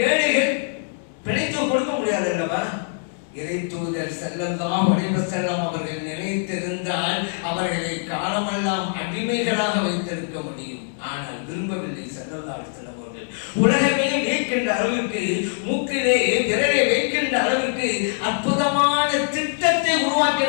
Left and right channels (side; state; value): right; silent; 63 dB below the other